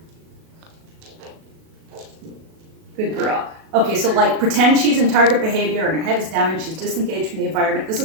Good girl. Okay, so like pretend she's in target behavior and her head is down and she's disengaged from the environment. This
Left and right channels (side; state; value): left; late; 37 ms